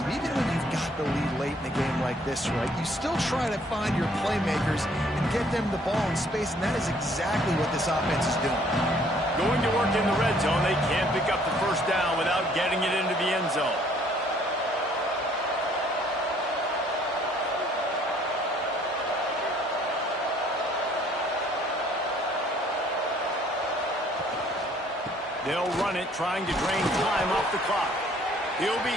Even when you've got the lead late in a game like this, right, you still try to find your playmakers and get them the ball in space, and that is exactly what this offense is doing. Going to work in the red zone, they can't pick up the 1st down without getting it into the end zone. They'll run it, trying to drain time off the clock. He'll be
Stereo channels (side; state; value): both; normal; correlation 0.61